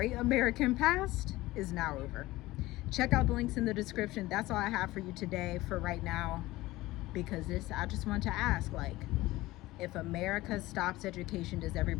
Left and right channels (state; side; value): quieter; right; 18.4 dB